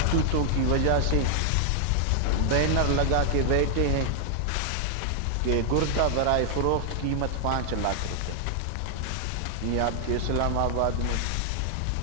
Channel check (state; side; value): different; both; correlation 0.00